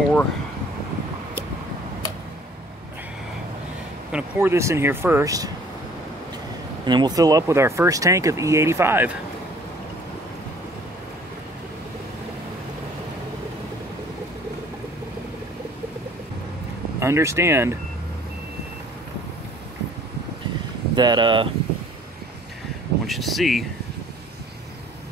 pour this in here first, and then we'll fill up with our first tank of E85. Understand that I want you to see,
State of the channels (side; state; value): both; normal; correlation 0.55